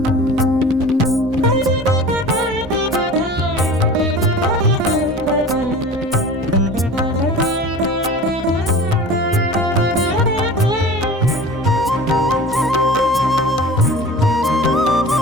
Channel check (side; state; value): both; normal; correlation 0.39